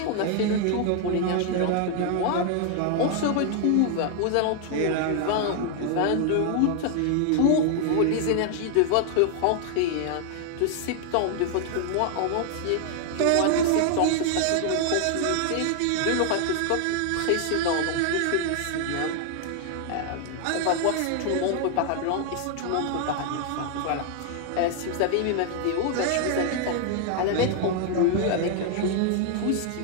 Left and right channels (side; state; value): both; different; correlation 0.00